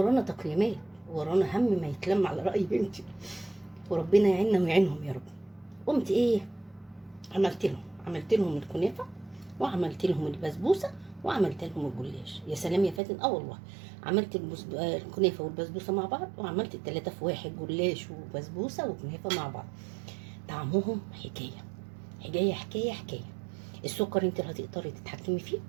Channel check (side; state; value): left; drops out; at 13.0 s